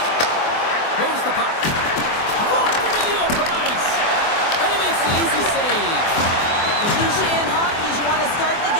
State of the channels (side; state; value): right; late; 24 ms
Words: Moves the puck. Dropped into the open ice. And he makes the easy save. The cliche in hockey is you want to start the